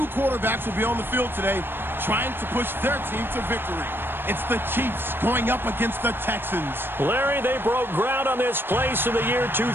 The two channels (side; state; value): left; late; 0.10 ms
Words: quarterbacks will be on the field today trying to push their team to victory. It's the Chiefs going up against the Texans. Larry, they broke ground on this place in the year